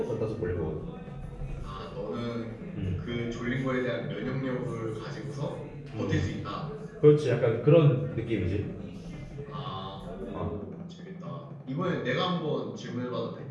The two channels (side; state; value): both; identical; correlation 1.00